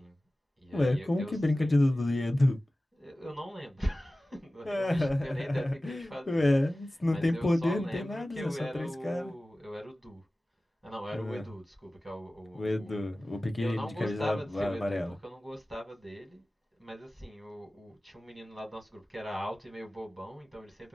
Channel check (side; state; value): both; normal; correlation 0.96